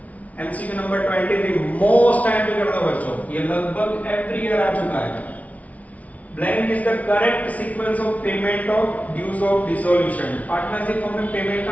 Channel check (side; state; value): right; late; 0.069 ms